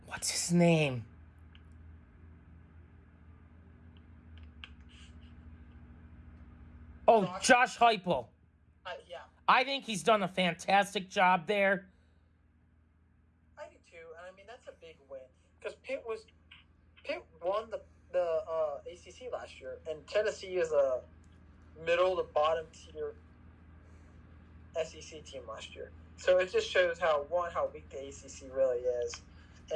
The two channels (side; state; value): both; identical; correlation 1.00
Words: What's his name? Oh, Josh Heupel. Yeah. I think he's done a fantastic job there. I do too, and I mean that's a big win, because Pitt won the ACC last year, and Tennessee is a middle to bottom tier SEC team last year. So it just shows how weak the ACC really is,